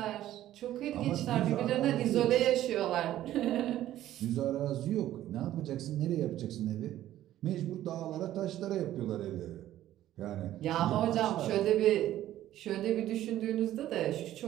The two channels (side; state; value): left; quieter; 13.2 dB